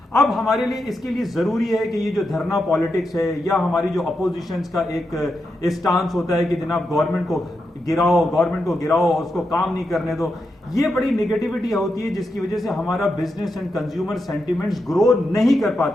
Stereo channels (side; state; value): both; normal; correlation 0.86